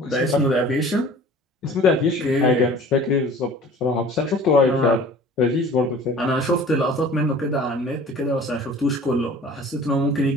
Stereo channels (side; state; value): both; normal; correlation 0.45